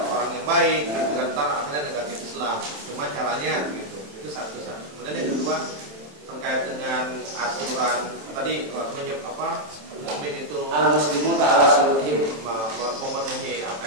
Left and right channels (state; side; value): late; left; 27 ms